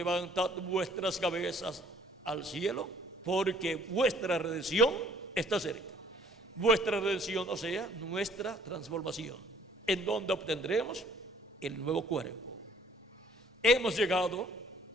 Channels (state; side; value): normal; both; correlation 0.59